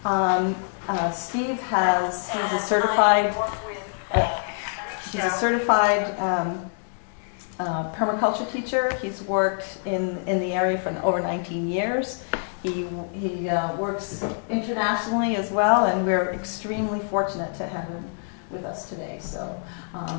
Steve he's a certified permaculture teacher. He's worked in the area for over 19 years. He works internationally as well, and we're extremely fortunate to have him with us today. So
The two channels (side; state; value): right; silent; digital silence